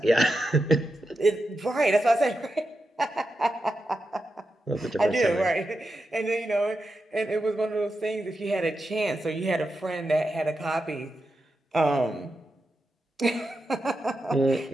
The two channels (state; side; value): normal; both; correlation 0.88